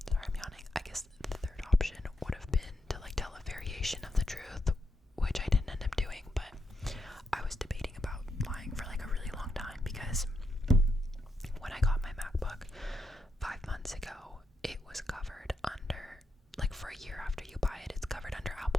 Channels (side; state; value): both; normal; correlation 0.83